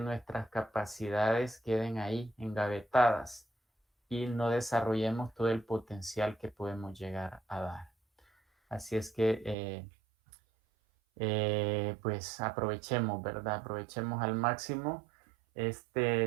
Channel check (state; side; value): drops out; left; at 9.6 s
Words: capacidades queden ahí, engavetadas, y no desarrollemos todo el potencial que podemos llegar a dar. Así es que, pues aprovechemos, ¿verdad? Aprovechemos al máximo